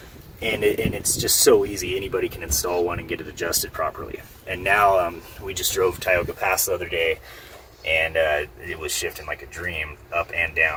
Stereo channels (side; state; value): both; identical; correlation 1.00